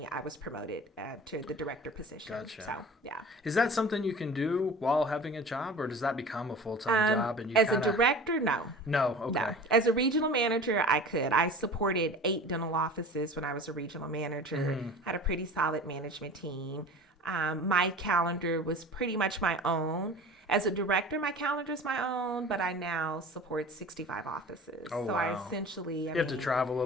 I was promoted to the director position. Gotcha. So, yeah. Is that something you can do while having a job, or does that become a full-time job? And as a director, no. No, okay. No. As a regional manager, I could. I supported 8 dental offices when I was a regional manager. Had a pretty solid management team. My calendar was pretty much my own. As a director, my calendar is my own, but I now support 65 offices. Oh, so wow. I essentially, you have to travel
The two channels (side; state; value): both; normal; correlation 0.39